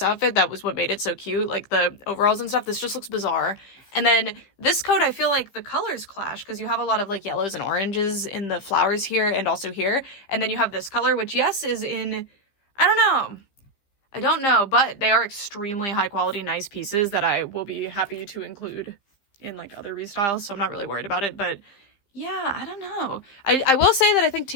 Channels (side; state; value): right; late; 15 ms